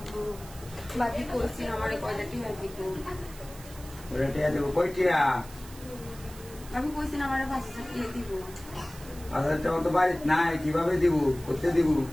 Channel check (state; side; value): noise; right; hiss, 18 dB below the sound